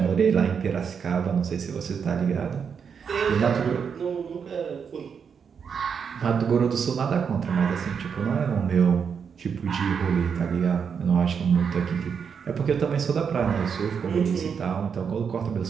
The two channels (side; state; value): left; quieter; 6.7 dB